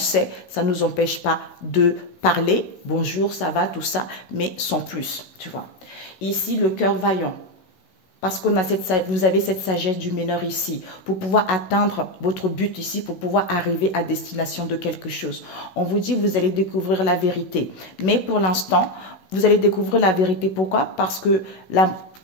ça ne nous empêche pas de parler, bonjour, ça va, tout ça, mais sans plus, tu vois. Ici, le cœur vaillant. Parce qu'on a vous avez cette sagesse du meneur ici, pour pouvoir atteindre votre but ici, pour pouvoir arriver à destination de quelque chose. On vous dit, vous allez découvrir la vérité. Mais pour l'instant, vous allez découvrir la vérité. Pourquoi? Parce que,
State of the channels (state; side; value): late; right; 16 ms